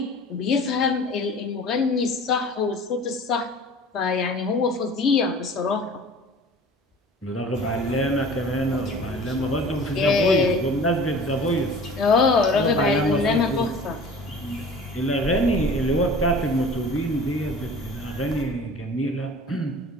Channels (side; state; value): both; normal; correlation 0.44